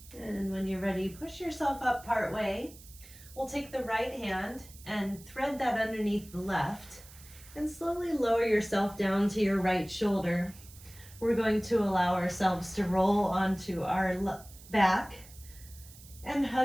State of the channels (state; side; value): noise; right; hiss, 20 dB below the sound